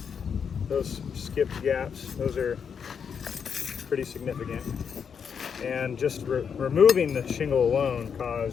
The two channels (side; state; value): right; quieter; 6.9 dB